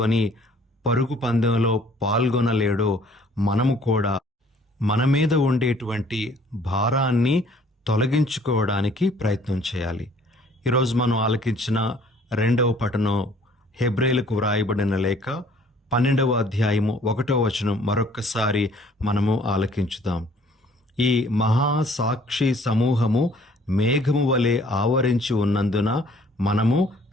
పరుగు పందెంలో పాల్గొనలేడో మనము కూడా మన మీద ఉండేటువంటి భారాన్ని తొలగించుకోవడానికి ప్రయత్నం చేయాలి. ఈరోజు మనం ఆలకించిన 2వ పఠనం హెబ్రేలకు వ్రాయబడిన లేఖ 12వ అధ్యాయము 1వ వచనం మరొక్కసారి మనము ఆలకించుదాం. ఈ మహాసాక్షి సమూహము మేఘము వలె ఆవరించి ఉన్నందున మనము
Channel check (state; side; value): normal; both; correlation 0.57